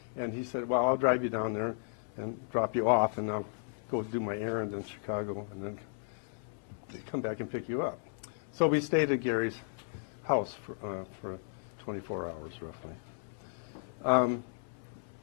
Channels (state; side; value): silent; right; 55 dB below the other